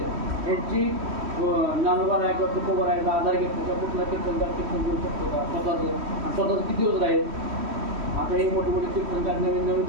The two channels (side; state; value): left; late; 3.1 ms